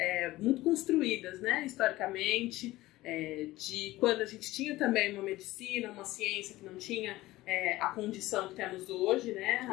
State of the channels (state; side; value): quieter; right; 17.7 dB